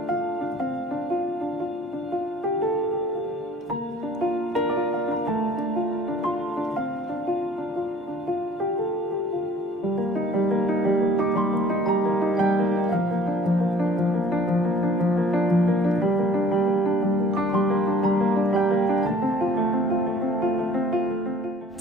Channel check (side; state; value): both; normal; correlation 0.52